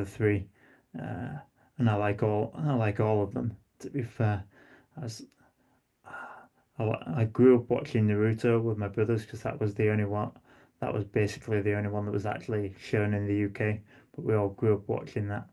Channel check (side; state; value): both; identical; correlation 1.00